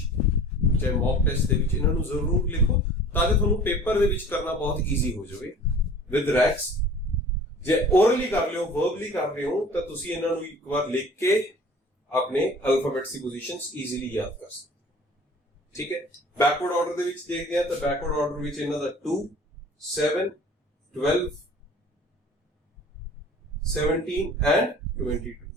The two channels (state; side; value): normal; both; correlation 0.45